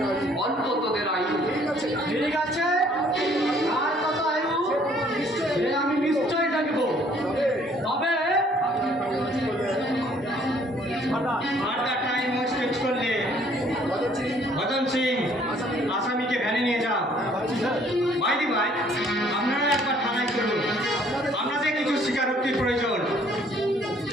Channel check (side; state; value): both; normal; correlation 0.61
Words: অল্প তোদের আয়ু। ঠিক আছে, আর কত আয়ু সে আমি নিশ্চয়ই দেখবো। তবে আর টাইম ওয়েস্ট করলে ভজন সিং আসামিকে ভ্যানে নিয়ে যাও। ভাইদি ভাই, আপনারা একবার থানায় চলুন, আপনাদের কিছু স্বীকারোক্তির প্রয়োজন।